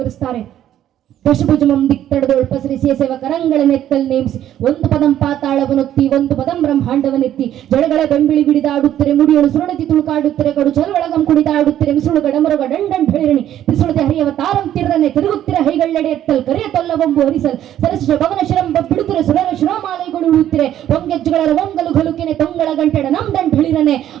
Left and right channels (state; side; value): quieter; left; 11.6 dB